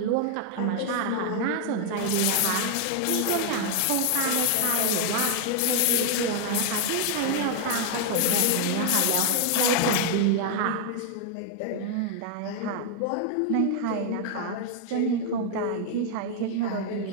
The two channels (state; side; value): different; both; correlation 0.00